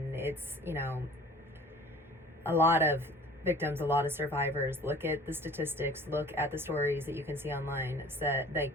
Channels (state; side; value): normal; both; correlation 0.47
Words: it's, you know, a lot of victims, a lot of survivors look at the statistics, look at the stories that you can see online, that,